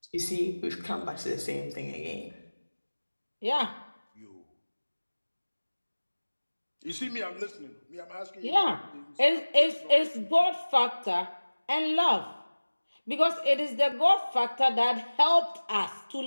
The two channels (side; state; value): both; inverted; correlation -1.00